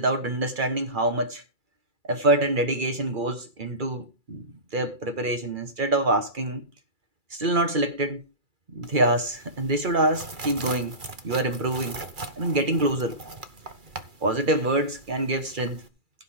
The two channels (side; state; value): left; late; 2.3 ms